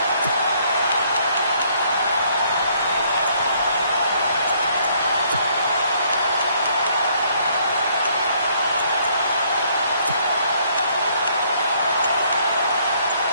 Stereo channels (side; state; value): both; inverted; correlation -0.66